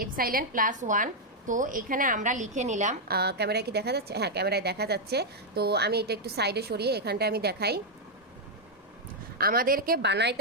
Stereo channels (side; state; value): both; normal; correlation -0.02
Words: +1। তো এখানে আমরা লিখে নিলাম, ক্যামেরায় কি দেখা যাচ্ছে? হ্যাঁ, ক্যামেরায় দেখা যাচ্ছে। তো আমি এটা একটু সাইডে সরিয়ে এখানটা আমি দেখাই। আমাদেরকে